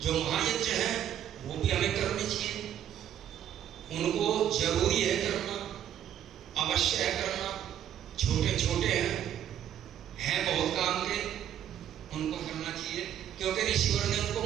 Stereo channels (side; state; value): left; quieter; 10.4 dB